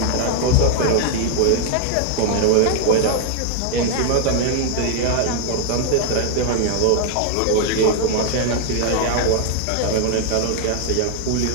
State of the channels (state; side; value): different; both; correlation 0.00